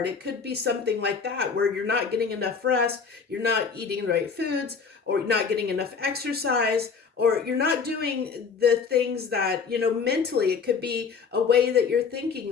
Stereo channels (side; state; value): right; quieter; 5.7 dB